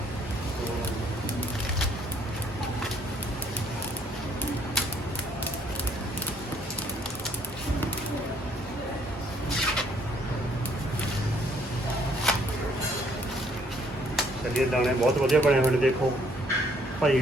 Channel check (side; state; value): both; normal; correlation 0.64